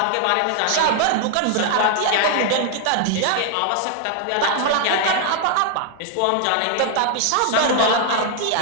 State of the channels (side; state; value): both; different; correlation 0.00